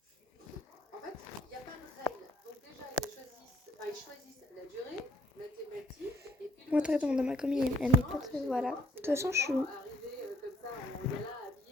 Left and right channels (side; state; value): both; normal; correlation 0.66